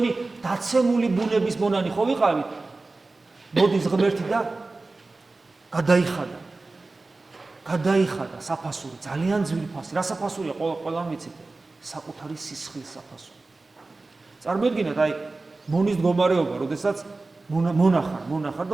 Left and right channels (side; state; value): left; quieter; 3.4 dB